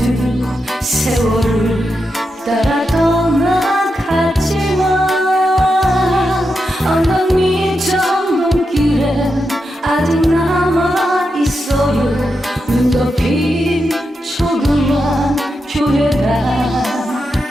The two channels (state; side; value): normal; both; correlation 0.87